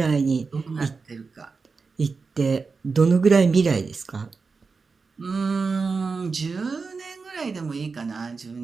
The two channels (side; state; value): left; quieter; 4.6 dB